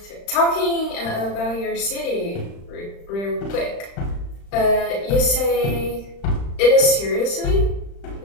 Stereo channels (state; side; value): late; right; 35 ms